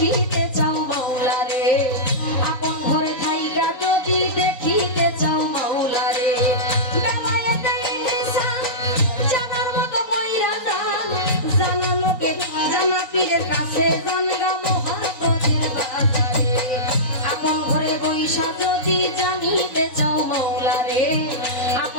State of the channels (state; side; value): late; right; 3.9 ms